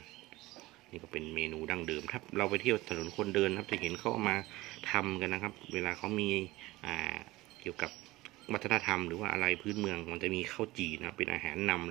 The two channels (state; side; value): quieter; left; 19.2 dB